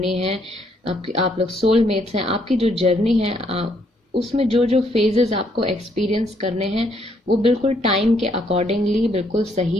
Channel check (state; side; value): normal; both; correlation 0.71